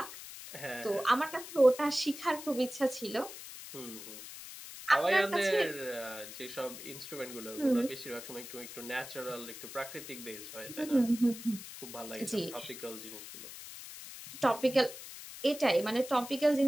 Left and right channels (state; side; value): noise; left; hiss, 12 dB below the sound